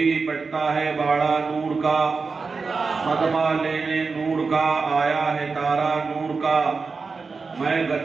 بٹتا ہے باڑا نور کا، صدمہ لینے نور کا آیا ہے تارا نور کا. میں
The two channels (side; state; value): left; quieter; 4.6 dB